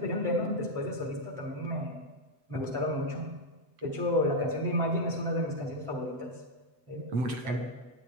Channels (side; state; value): left; late; 7.9 ms